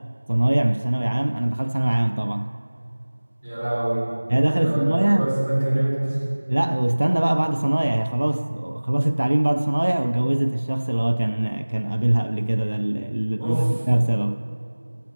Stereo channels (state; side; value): inverted; both; correlation -1.00